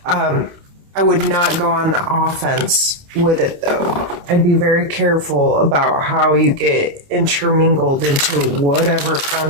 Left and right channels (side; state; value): left; late; 28 ms